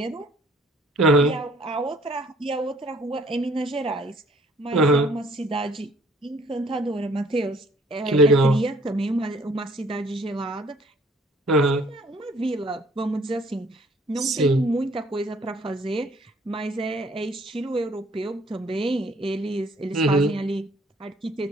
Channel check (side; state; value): both; normal; correlation 0.58